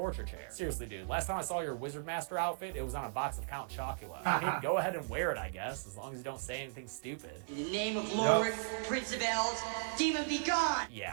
chair. Seriously, dude, last time I saw your wizard master outfit, it was on a box of Count Chocula. I mean, go ahead and wear it, I guess, as long as you don't say anything stupid. In the name of Lord, Prince of Elves, demon be gone!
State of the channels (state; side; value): silent; left; digital silence